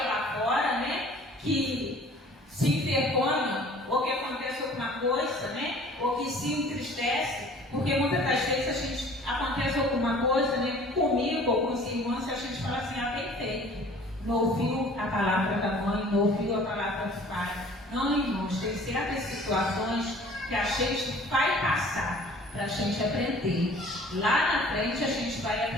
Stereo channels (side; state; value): both; normal; correlation 0.50